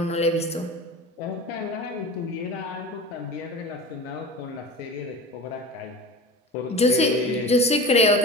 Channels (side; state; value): both; normal; correlation 0.32